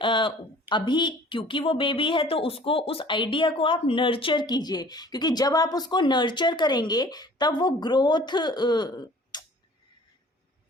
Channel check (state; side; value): normal; both; correlation 0.50